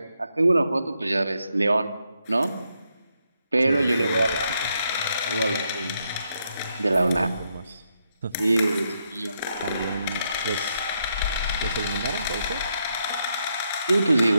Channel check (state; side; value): inverted; both; correlation -0.79